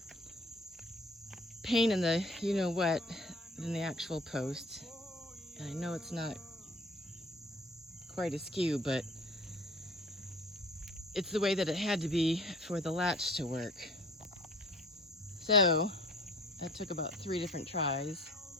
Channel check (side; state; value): both; normal; correlation 0.49